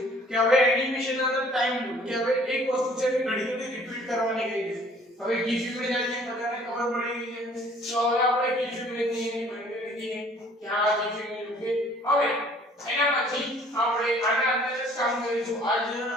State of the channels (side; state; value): both; normal; correlation 0.55